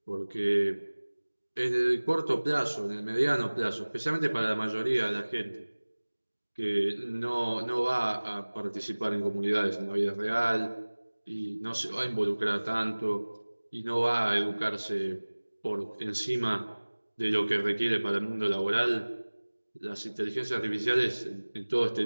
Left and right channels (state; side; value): inverted; both; correlation -1.00